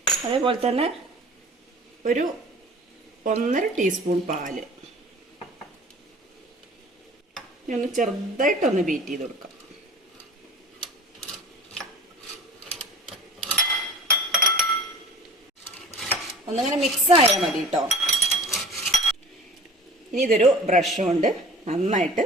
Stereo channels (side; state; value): both; normal; correlation 0.43